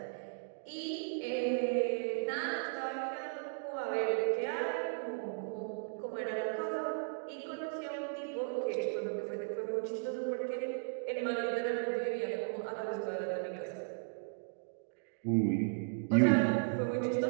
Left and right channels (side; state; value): left; silent; digital silence